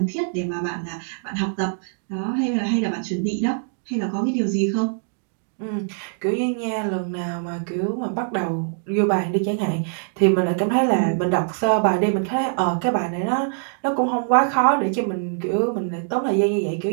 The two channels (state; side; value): silent; left; 63 dB below the other